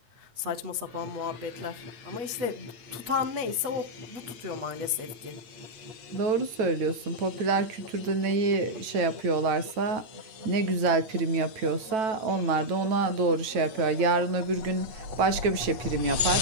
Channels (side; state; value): left; late; 9.2 ms